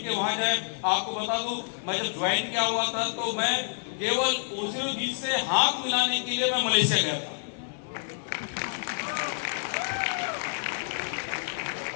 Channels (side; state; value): right; silent; digital silence